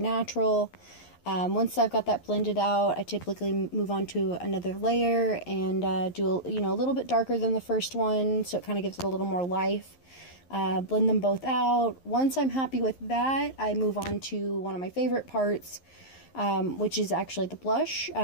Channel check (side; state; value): right; late; 11 ms